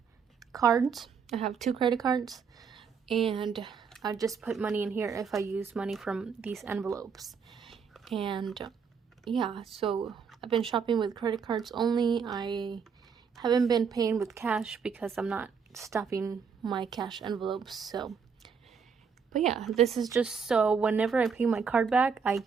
I have 2 credit cards, and I just put money in here if I use money from these envelopes. And yeah, so I've been shopping with credit cards only. I haven't been paying with cash because I'm not stuffing my cash envelopes. So, but yeah, this is just so whenever I pay my card back, I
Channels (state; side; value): quieter; left; 6.1 dB